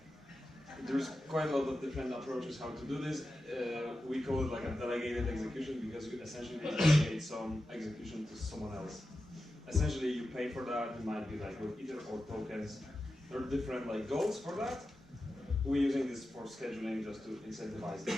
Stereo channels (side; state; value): both; normal; correlation 0.92